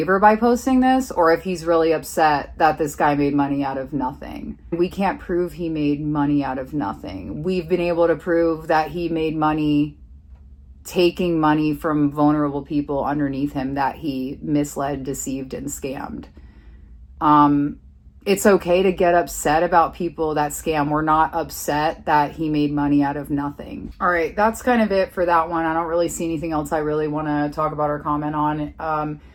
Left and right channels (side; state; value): both; identical; correlation 1.00